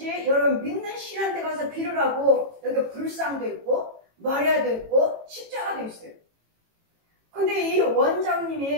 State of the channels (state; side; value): late; left; 18 ms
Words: 여러분 믿는 신한테 가서 빌으라고. 여기 불상도 있고 마리아도 있고 십자가도 있어요. 근데 이